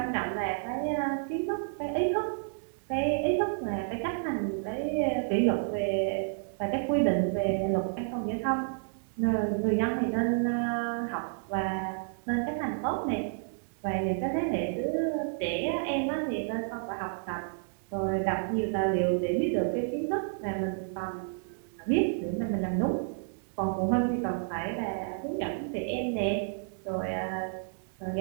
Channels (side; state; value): left; silent; digital silence